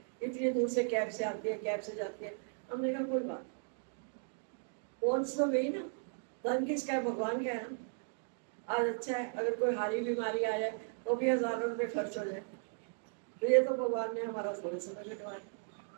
इतनी दूर से कैब से आती है, कैब से जाती है। हमने कहा कोई बात, कौन सा गई ना, धन किसका है, भगवान का है ना। आज अच्छा है अगर कोई हारी बीमारी आ जाए तो भी हजारों रुपये खर्च हो जाए, तो ये तो भगवान ने हमारा थोड़े समय कटवाया।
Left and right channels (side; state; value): left; silent; digital silence